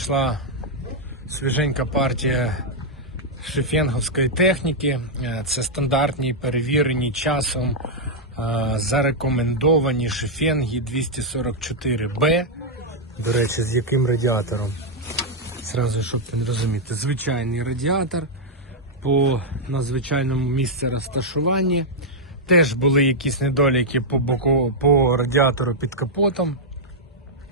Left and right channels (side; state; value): both; normal; correlation -0.05